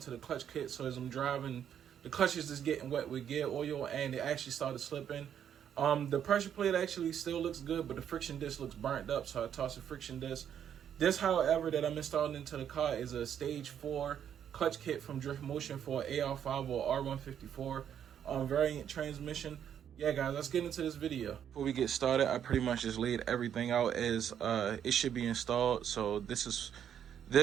the clutch kit. So as I'm driving, the clutch is just getting wet with gear oil, and it actually started slipping. The pressure plate actually still looks good, but the friction disc looks burnt up, so I tossed the friction disc. This, however, that I'm installing into the car is a stage 4 clutch kit from Drift Motion for AR5 or R154 variant transmission. Yeah, guys, let's get into this video. Before we get started, I pretty much just laid everything out as it should be installed. So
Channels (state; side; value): quieter; left; 9.1 dB